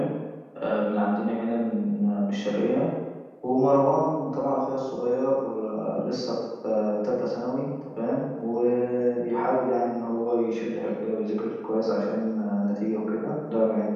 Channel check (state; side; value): identical; both; correlation 1.00